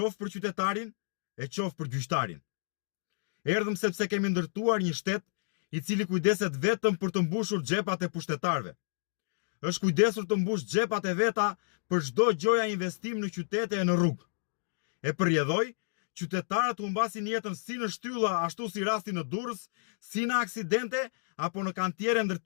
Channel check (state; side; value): silent; right; digital silence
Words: për qytetarin e qoftë për gjyqtarin? Erdhëm sepse kemi ndërtuar një shtet i cili kujdeset vetëm për të mbushur xhepat e pushtetarëve. Është kujdesur të mbush xhepat e veta për çdo gjoja investim në qytete e në rrugë. E përjedhoi, qytetarët humbasin jetën si në shtylla ashtu si rasti në Durrës, si në aksidente apo në kantiere